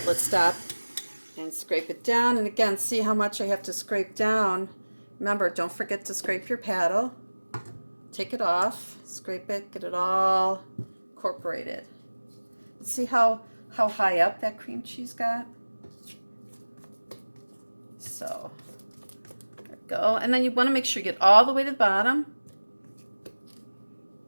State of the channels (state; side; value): inverted; both; correlation -1.00